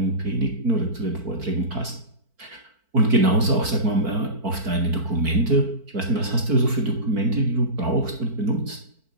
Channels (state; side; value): late; left; 4.5 ms